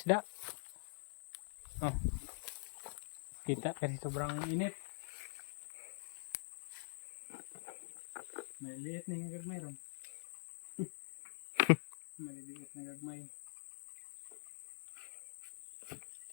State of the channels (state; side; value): silent; right; digital silence